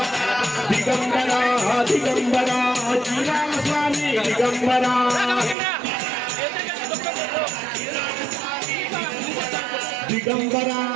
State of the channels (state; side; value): drops out; left; at 5.6 s